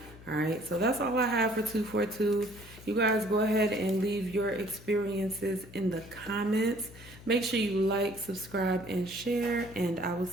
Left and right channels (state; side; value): noise; left; hum, 19 dB below the sound